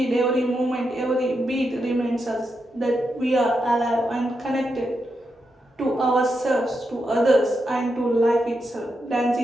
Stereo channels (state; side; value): normal; both; correlation 0.85